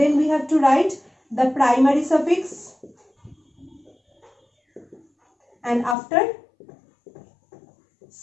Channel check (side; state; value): right; drops out; at 6.0 s